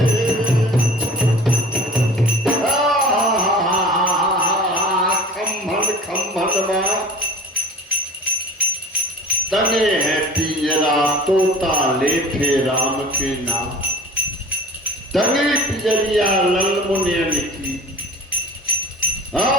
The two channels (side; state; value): both; normal; correlation 0.41